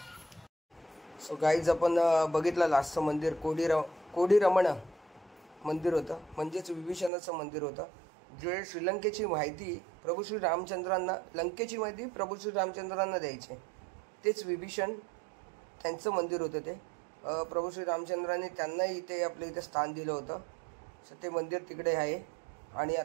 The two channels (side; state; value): left; drops out; at 7.1 s